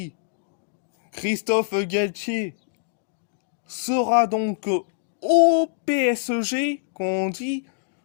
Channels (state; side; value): silent; right; digital silence